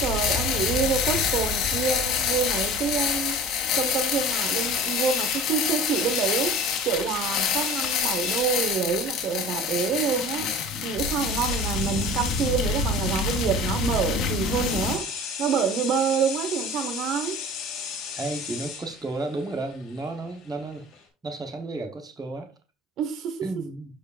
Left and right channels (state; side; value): normal; both; correlation 0.41